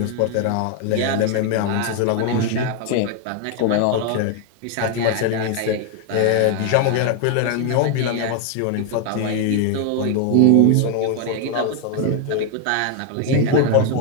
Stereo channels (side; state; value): both; different; correlation 0.01